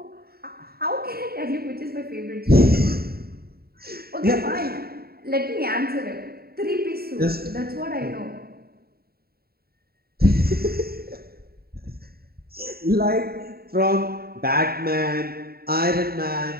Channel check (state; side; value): late; left; 0.45 ms